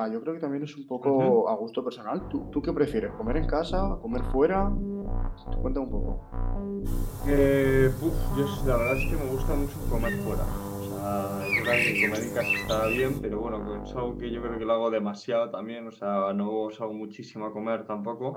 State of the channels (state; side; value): identical; both; correlation 1.00